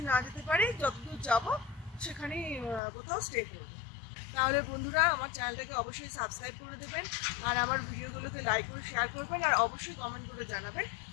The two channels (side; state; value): right; drops out; at 2.8 s